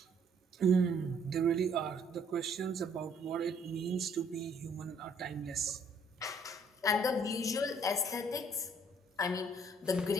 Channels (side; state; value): both; normal; correlation 0.63